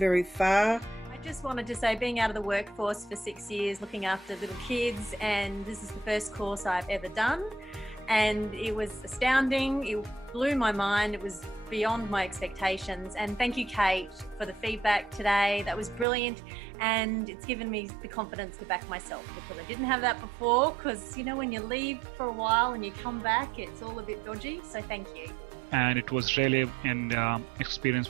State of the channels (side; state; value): left; drops out; at 16.1 s